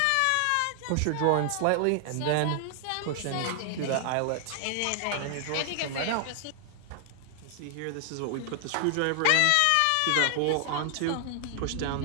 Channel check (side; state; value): both; different; correlation 0.00